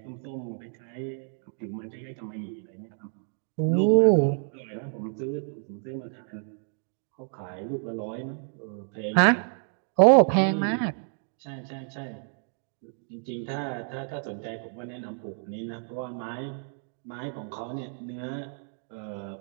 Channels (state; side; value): silent; left; 59 dB below the other